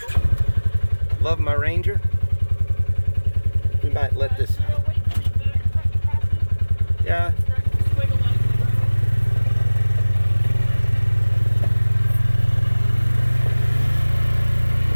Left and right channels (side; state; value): both; inverted; correlation -1.00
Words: Love my Ranger. We might let this. Yeah.